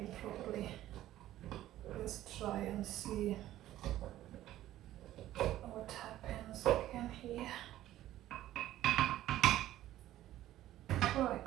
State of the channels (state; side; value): quieter; left; 13.8 dB